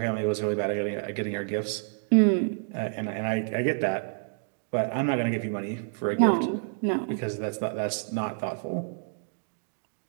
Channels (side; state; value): left; silent; 59 dB below the other